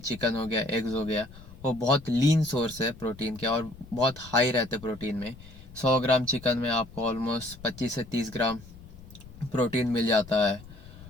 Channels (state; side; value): noise; left; rumble, 18 dB below the sound